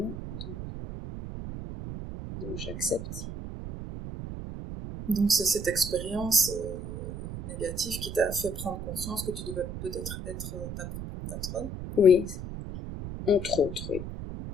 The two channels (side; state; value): right; noise; rumble, 7 dB below the sound